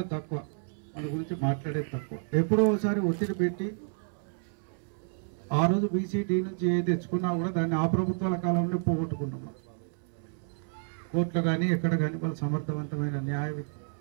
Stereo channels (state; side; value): silent; left; 58 dB below the other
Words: తక్కువ, మన గురించి మాట్లాడేది తక్కువ. ఎప్పుడో ఒకసారి ఒత్తిడి పెట్టి ఆ రోజు బీసీడీ నుంచి ఏ తెచ్చుకున్నా కూడా దాన్ని ఆ ప్రభుత్వాల కాలంలో పోగొట్టుకున్నాం. కోర్టులో కానీ ఎక్కడ కానీ వాళ్ళు సమర్థవంతమైన న్యాయ